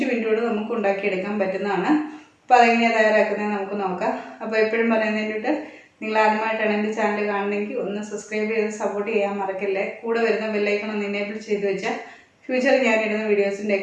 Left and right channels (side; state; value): both; identical; correlation 1.00